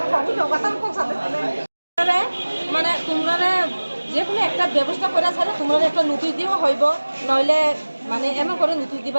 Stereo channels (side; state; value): both; inverted; correlation -1.00